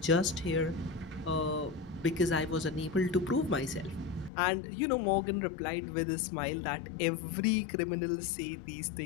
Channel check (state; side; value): drops out; right; at 4.3 s